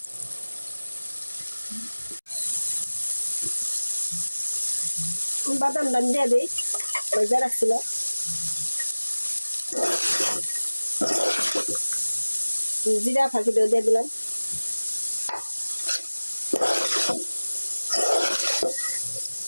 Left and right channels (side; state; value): both; inverted; correlation -1.00